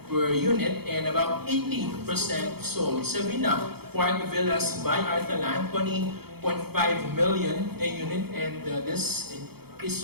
per unit and about 80% sold. Savina Park Villas by Artaland, 20.5 million a unit, and this is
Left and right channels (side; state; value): left; late; 0.96 ms